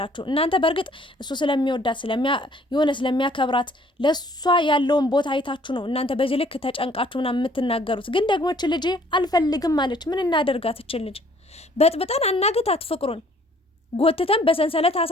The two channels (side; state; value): both; normal; correlation 0.59